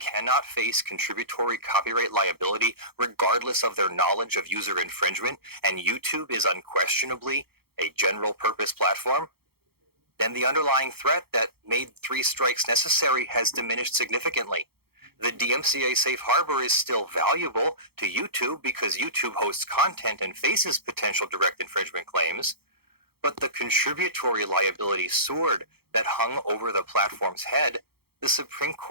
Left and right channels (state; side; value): late; left; 0.95 ms